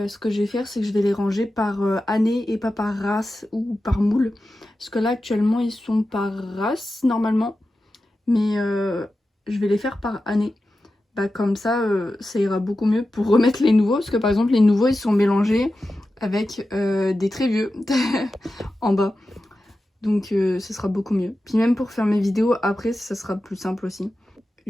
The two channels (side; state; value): both; normal; correlation 0.92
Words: que je vais faire, c'est que je vais les ranger par année et pas par race ou par moule. Parce que là actuellement ils sont par race normalement, mais je vais les faire par année. Comme ça ça ira beaucoup mieux pour remettre les nouveaux, parce que par exemple les nouveaux ils sont mélangés avec des très vieux en bas. Donc ce sera beaucoup mieux. Puis même pour faire mes vidéos après ça sera plus simple aussi.